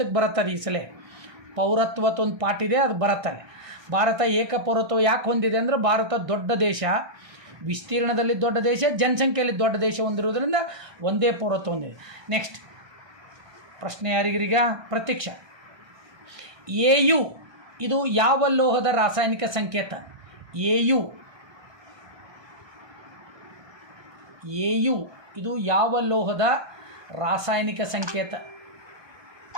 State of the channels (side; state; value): left; late; 1.2 ms